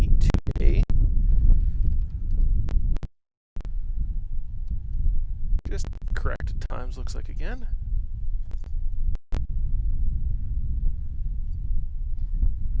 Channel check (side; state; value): both; identical; correlation 1.00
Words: 2A? Just corrected times looks like again.